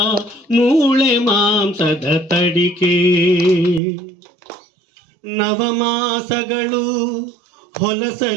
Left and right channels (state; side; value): drops out; left; at 3.8 s